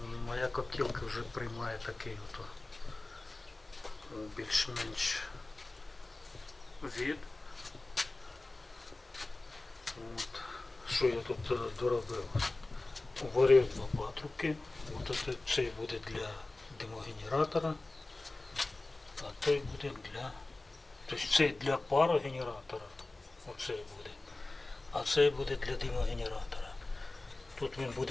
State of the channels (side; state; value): right; quieter; 3.0 dB